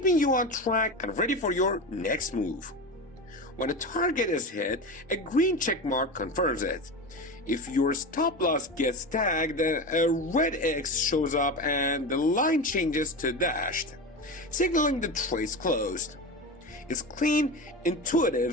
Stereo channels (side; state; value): both; normal; correlation 0.24